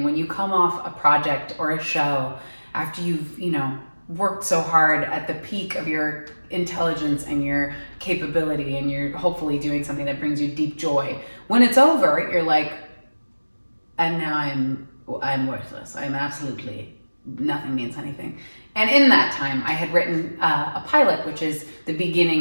when you come off a project or a show after you've, worked so hard at the peak of your intelligence and your capability, and you're hopefully doing something that brings you deep joy. When it's over, you're like, and now I'm worthless. I'm absolutely, nothing means anything. And in that time, I had written a pilot, which is the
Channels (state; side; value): inverted; both; correlation -1.00